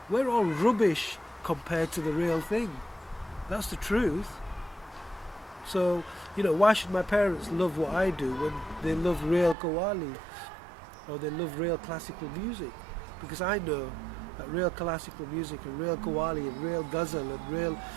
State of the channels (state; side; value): drops out; left; at 9.6 s